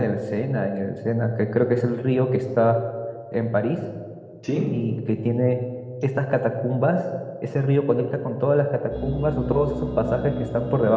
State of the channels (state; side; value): identical; both; correlation 1.00